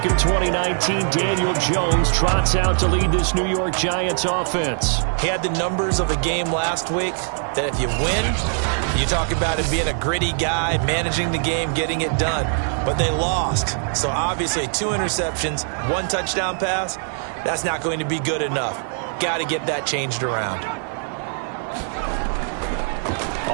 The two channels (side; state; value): left; silent; 62 dB below the other